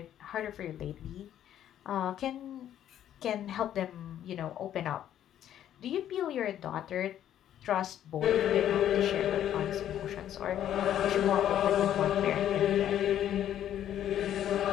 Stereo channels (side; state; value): right; quieter; 10.9 dB